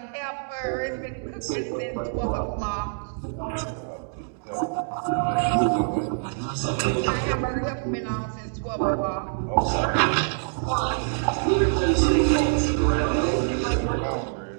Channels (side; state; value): left; silent; digital silence